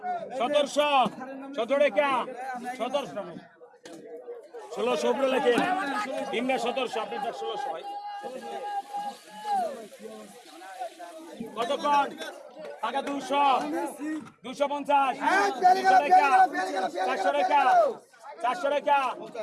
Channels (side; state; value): both; identical; correlation 1.00